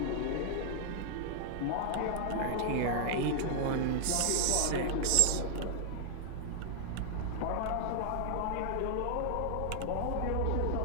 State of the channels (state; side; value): different; both; correlation 0.00